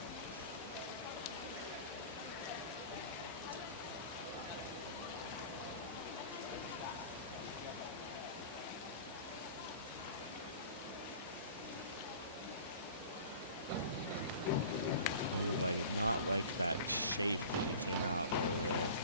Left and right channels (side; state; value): both; inverted; correlation -0.40